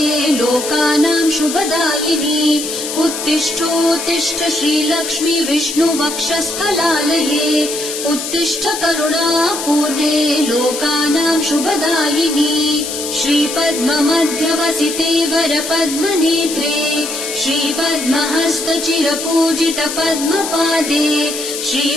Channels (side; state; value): left; noise; hiss, 6 dB below the sound